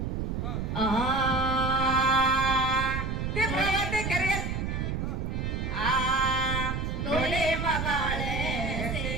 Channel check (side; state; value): right; noise; rumble, 2 dB below the sound